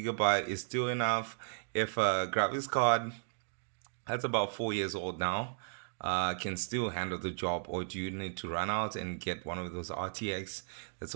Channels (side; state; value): left; silent; digital silence